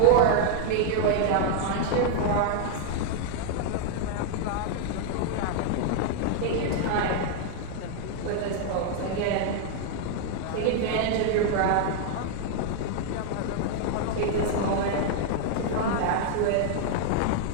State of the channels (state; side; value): different; both; correlation 0.00